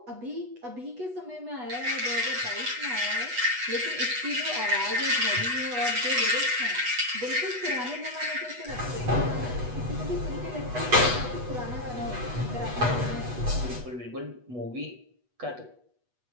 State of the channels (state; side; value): late; left; 8.2 ms